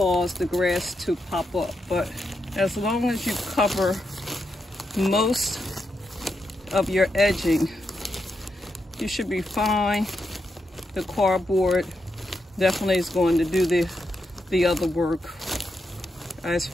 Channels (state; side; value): normal; both; correlation 0.84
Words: the grass to pop up. But as long as you cover most of your edging, you should be fine. The cardboard definitely is going to do the other work as